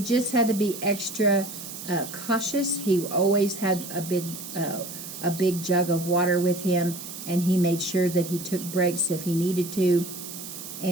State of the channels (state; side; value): noise; right; hiss, 10 dB below the sound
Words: just had to be extra cautious. He always had a big jug of water with him, and he made sure that he took breaks if he needed to,